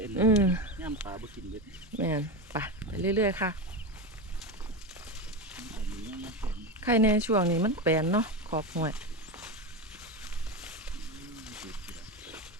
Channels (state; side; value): normal; both; correlation 0.18